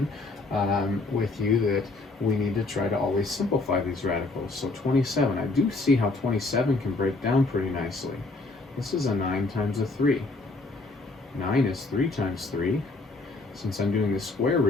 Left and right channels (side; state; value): right; quieter; 3.4 dB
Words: with you that we need to try to always simplify these radicals. So 27, I do see how 27 can break down pretty nicely. This is a 9 times a 3. 9 is 3 times 3. Since I'm doing the square